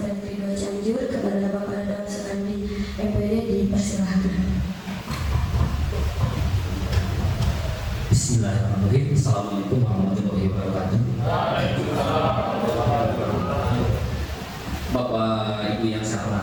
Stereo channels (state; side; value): identical; both; correlation 1.00